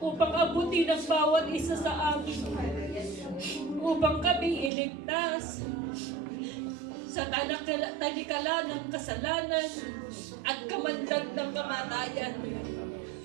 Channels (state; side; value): drops out; left; at 4.7 s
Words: abutin ang bawat isa sa amin, upang kami iligtas sa talikala ng kasalanan at kamandag ng kamatayan.